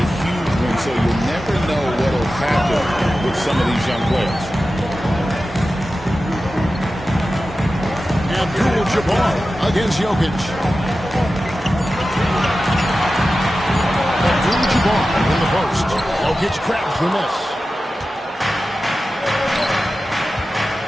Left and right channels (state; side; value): normal; both; correlation 0.94